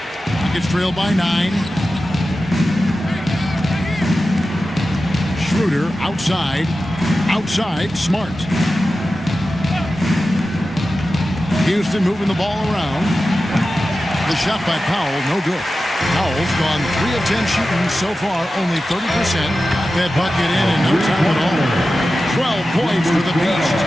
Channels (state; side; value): normal; both; correlation 0.93